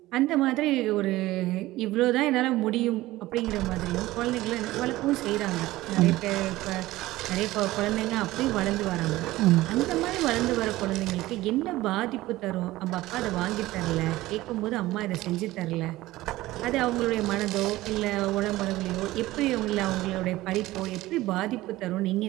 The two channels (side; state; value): left; quieter; 17.5 dB